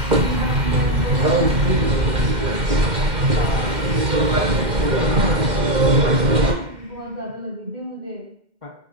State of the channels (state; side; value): late; left; 2.1 ms